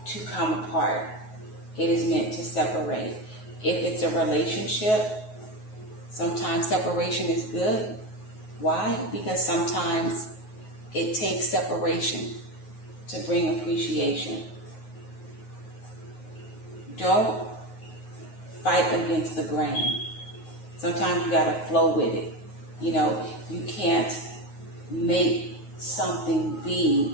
to come apart. It is meant to separate. If it's a relationship, sometimes separation is good. Why? Because sometimes it takes separation to bring appreciation. Don't fight against the grain. Sometimes you gotta flow with it. You know, you can't make something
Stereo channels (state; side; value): late; right; 9.4 ms